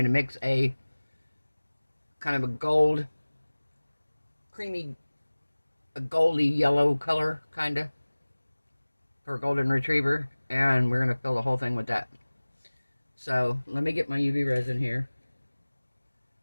to mix a kind of a gold, creamy, a goldy yellow color, kind of, for a golden retriever. And we're going to fill the whole thing with that. So, let me get my UV resin here.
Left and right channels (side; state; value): both; inverted; correlation -1.00